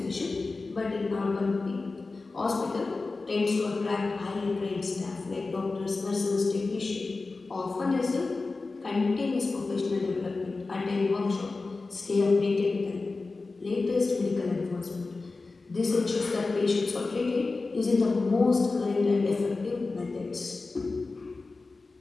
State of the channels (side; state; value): right; quieter; 3.7 dB